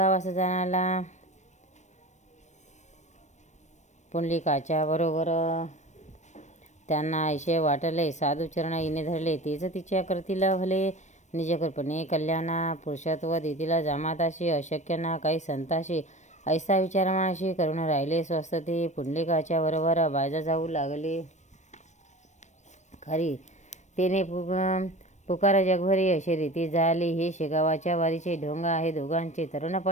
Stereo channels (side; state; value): right; late; 0.34 ms